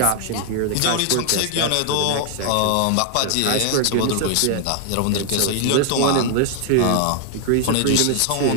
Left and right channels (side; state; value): both; different; correlation 0.00